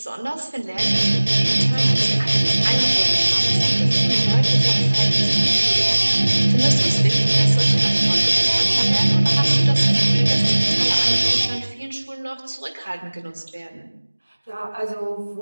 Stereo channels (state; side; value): inverted; both; correlation -1.00